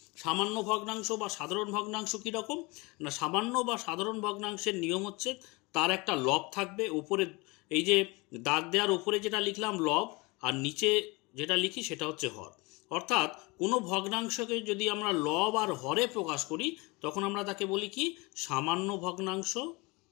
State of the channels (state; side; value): quieter; right; 25.7 dB